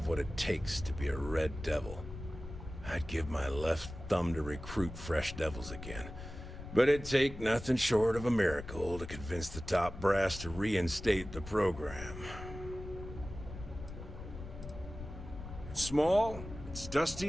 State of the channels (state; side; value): noise; left; rumble, 11 dB below the sound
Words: what it takes to be a Red Devil. I'd give my left thumb to recruit fresh devils again, but it'd take nothing short of a miracle to convince the top brass to reinstate the program. It's small, it's